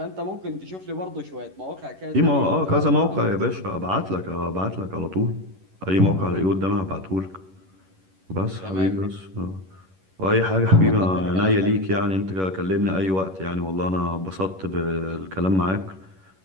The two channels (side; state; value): left; late; 11 ms